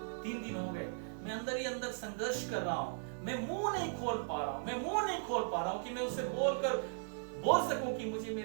3 दिन हो गए, मैं अंदर ही अंदर संघर्ष कर रहा हूं। मैं मुंह नहीं खोल पा रहा हूं कि मैं उसे बोल सकूं कि मुझे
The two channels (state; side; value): silent; left; 53 dB below the other